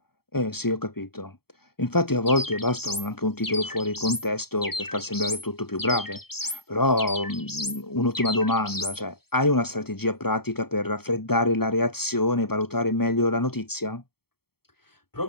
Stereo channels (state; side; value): late; right; 0.95 ms